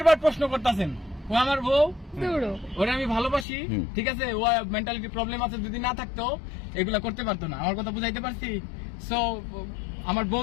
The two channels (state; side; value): drops out; right; at 3.5 s